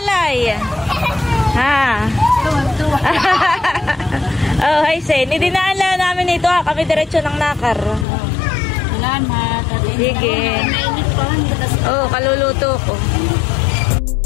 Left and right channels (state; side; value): drops out; right; at 8.1 s